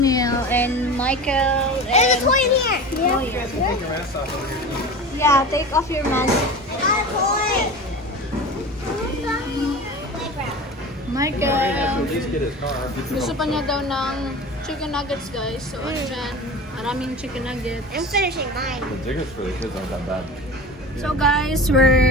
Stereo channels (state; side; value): normal; both; correlation 0.33